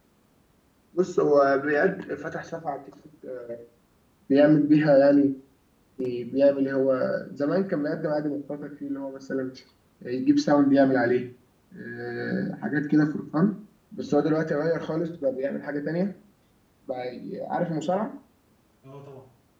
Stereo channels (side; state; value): both; identical; correlation 1.00